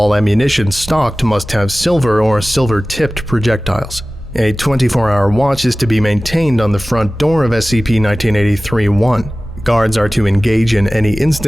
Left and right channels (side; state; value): both; normal; correlation 0.97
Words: ammunition stocked must have silver or silver-tipped projectiles. A 24-hour watch is to be maintained on the front door of SCP-1983-1. Guards are to engage in any